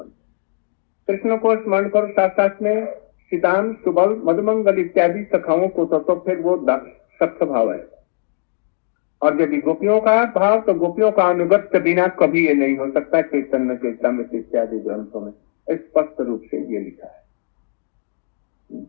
कृष्ण को स्मरण करो, साथ साथ में सीताम, सुबल, मधुमंगल इत्यादि सखाओं को तो फिर वो सख्त भाव है। और यदि गोपियों का भाव, तो गोपियों का अनुगत के बिना कभी ये नहीं हो सकता। चैतन्य चरितामृत इत्यादि ग्रंथों में स्पष्ट रूप से ये लिखा है।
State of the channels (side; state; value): right; silent; digital silence